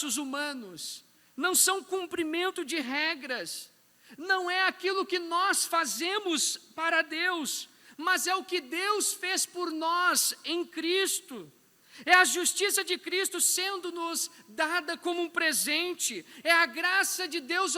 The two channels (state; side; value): identical; both; correlation 1.00